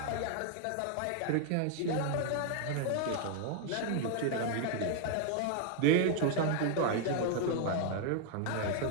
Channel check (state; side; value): different; both; correlation 0.00